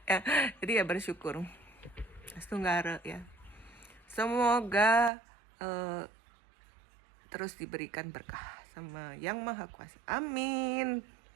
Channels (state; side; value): drops out; left; at 5.1 s